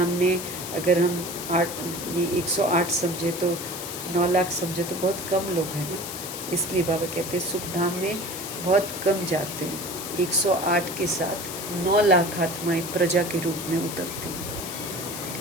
अगर हम ये 108 समझे, तो 9 लाख समझे, तो बहुत कम लोग हैं ना। इसलिए बाबा कहते हैं सुख धाम में बहुत कम जाते हैं। 108 के साथ 9 लाख आत्माएं प्रजा के रूप में उतरती हैं।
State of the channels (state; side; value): noise; left; hiss, 8 dB below the sound